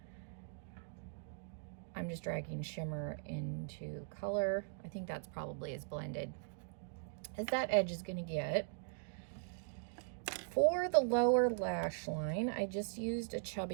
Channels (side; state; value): left; silent; digital silence